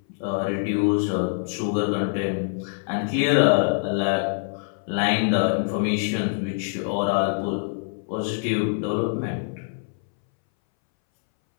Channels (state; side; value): silent; right; 61 dB below the other